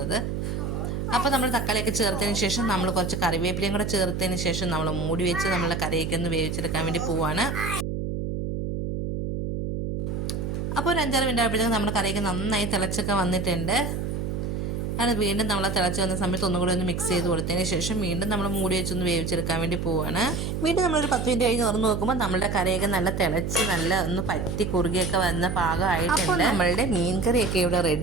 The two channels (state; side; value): noise; right; hum, 3 dB below the sound